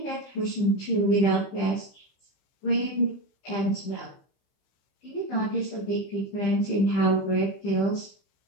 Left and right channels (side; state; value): right; late; 15 ms